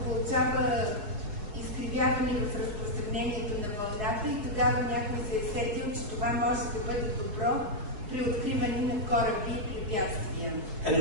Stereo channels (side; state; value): left; late; 4.7 ms